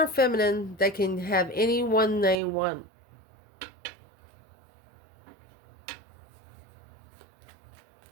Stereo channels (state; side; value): drops out; left; at 2.4 s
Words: feminine that can have anyone they want.